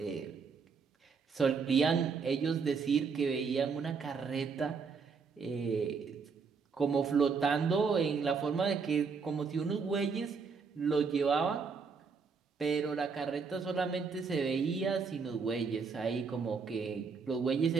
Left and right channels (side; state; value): left; quieter; 5.4 dB